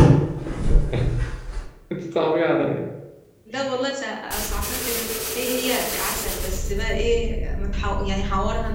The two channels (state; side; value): identical; both; correlation 1.00